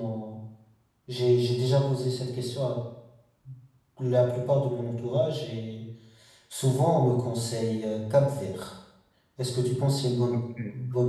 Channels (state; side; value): identical; both; correlation 1.00